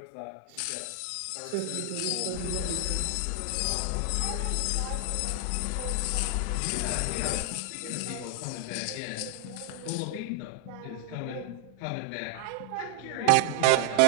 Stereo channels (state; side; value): different; both; correlation 0.00